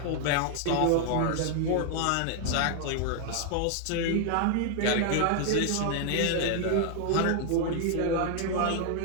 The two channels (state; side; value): different; both; correlation 0.00